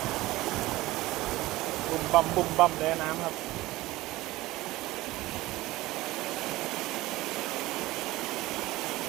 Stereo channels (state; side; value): quieter; left; 18.2 dB